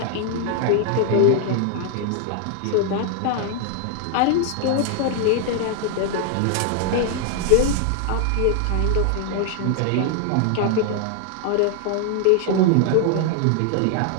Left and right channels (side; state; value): both; different; correlation 0.00